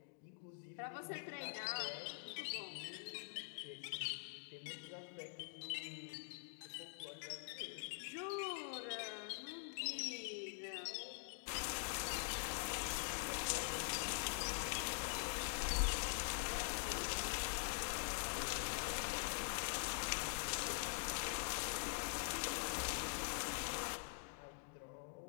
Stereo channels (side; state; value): right; silent; digital silence